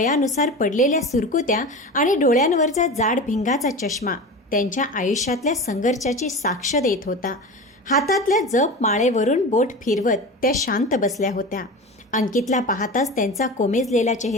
पडलेल्या सुरकुत्या आणि डोळ्यांवरचा जाड भिंगाचा चष्मा त्यांच्या आयुष्यातल्या संघर्षाची साक्ष देत होता. हातातल्या जप माळेवरून बोट फिरवत त्या शांत बसल्या होत्या. अंकितला पाहताच त्यांचा कोमेजलेला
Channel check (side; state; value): both; normal; correlation 0.30